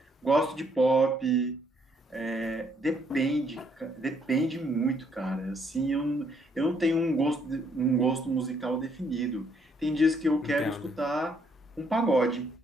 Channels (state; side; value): normal; both; correlation 0.70